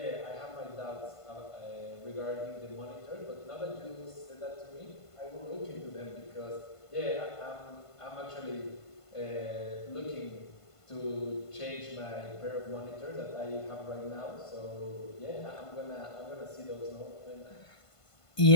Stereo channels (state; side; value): late; right; 1.5 ms